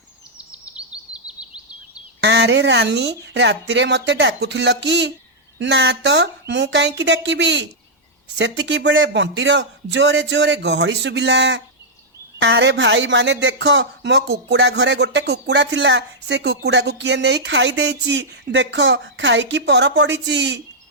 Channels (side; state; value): both; normal; correlation -0.07